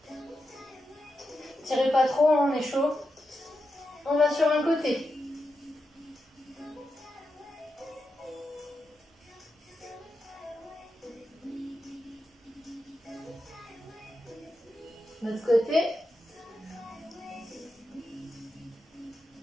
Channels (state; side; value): normal; both; correlation 0.88